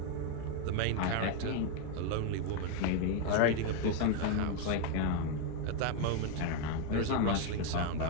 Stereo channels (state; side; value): different; both; correlation 0.01